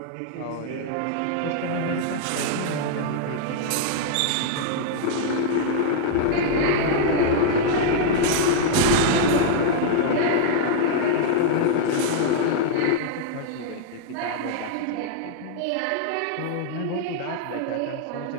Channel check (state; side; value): different; both; correlation -0.01